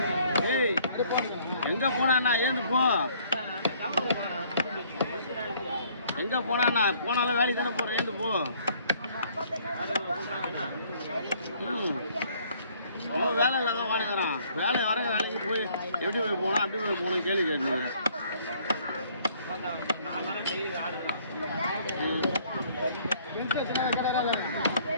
ஏய் எங்கே போனாண்ணா ஏந்து போ. எங்கே போனாண்ணா போனாலும் வேலைக்கு தானே போகிறேன் ஏந்து போ. அவன் வேலை இல்லாத வாடகைறான். வேலை வர வேலைக்கு போய் எப்படி போய் போனா அப்படி போய் போகணும் கேள்வி கேட்டீங்க.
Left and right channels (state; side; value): inverted; both; correlation -0.61